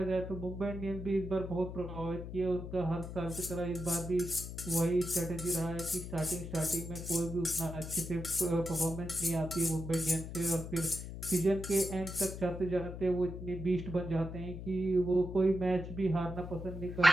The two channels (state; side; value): noise; left; hum, 9 dB below the sound